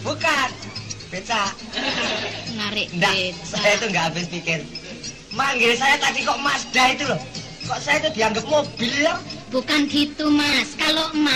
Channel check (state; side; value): identical; both; correlation 1.00